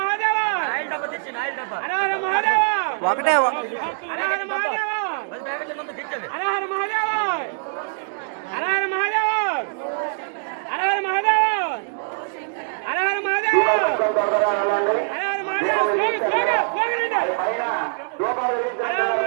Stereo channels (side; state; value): left; silent; digital silence